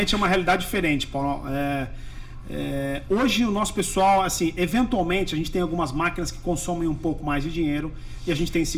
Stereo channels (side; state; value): both; identical; correlation 1.00